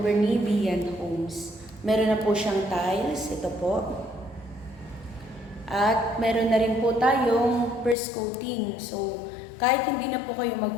ni Beyond Homes. Meron na po siyang tiles, ito po. At meron na rin po tayong first coating. So, kahit hindi na po kayo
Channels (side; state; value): right; drops out; at 8.0 s